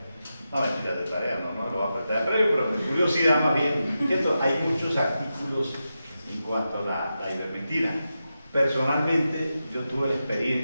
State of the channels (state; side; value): inverted; both; correlation -0.90